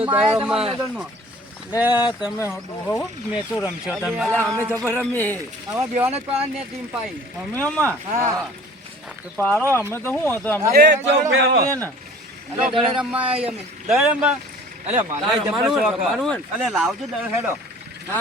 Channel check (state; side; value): normal; both; correlation 0.47